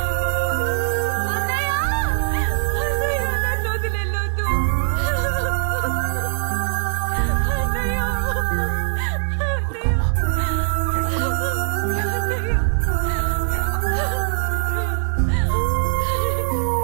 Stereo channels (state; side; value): silent; left; digital silence